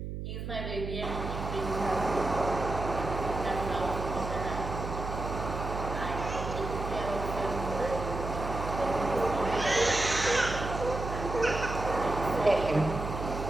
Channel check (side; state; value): right; noise; hum, 6 dB below the sound